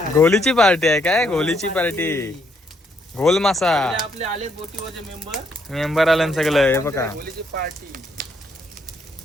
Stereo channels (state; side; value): normal; both; correlation 0.72